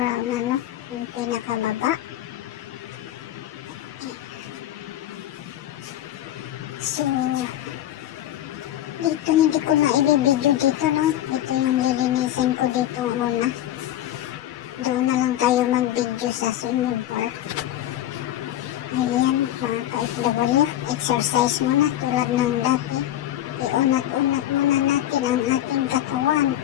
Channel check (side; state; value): right; quieter; 12.8 dB